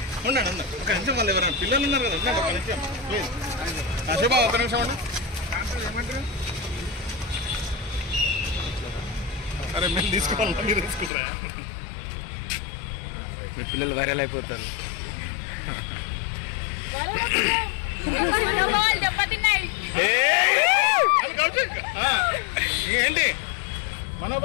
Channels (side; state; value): right; drops out; at 11.1 s